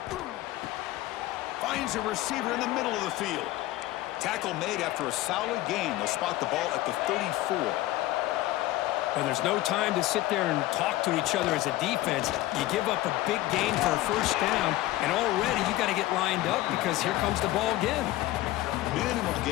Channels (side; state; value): right; quieter; 16.6 dB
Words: Finds a receiver in the middle of the field. Tackle made after a solid gain. They'll spot the ball at the 34. Well, there's no time to sit there and talk to each other as a defense. You give up a big gain for a first down, and already you got to get lined up because here comes the ball again. Minimal